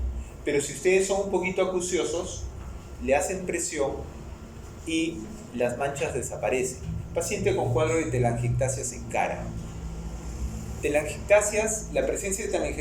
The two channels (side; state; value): both; identical; correlation 1.00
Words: Pero si ustedes son un poquito acuciosos, le hacen presión y las manchas desaparecen. Paciente con cuadro de telangiectasias en cara. Telangiectasias, la presencia de